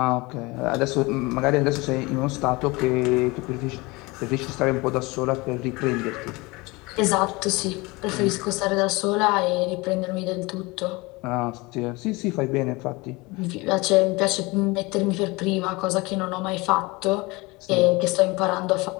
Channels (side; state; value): right; quieter; 24.1 dB